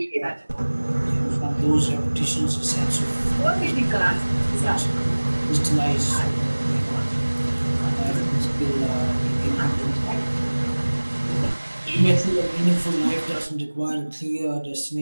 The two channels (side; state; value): both; inverted; correlation -1.00